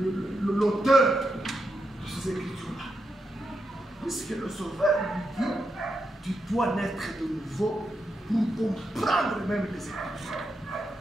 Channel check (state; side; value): normal; both; correlation 0.85